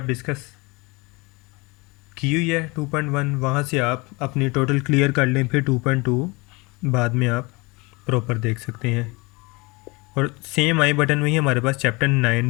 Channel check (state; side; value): quieter; right; 26.1 dB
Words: डिस्कस की हुई है 2.1, वहाँ से आप अपनी टोटल क्लियर कर लें, फिर 2.2 बाद में आप प्रॉपर देख सकते हैं। और सेम आई बटन में ही हमारे पास चैप्टर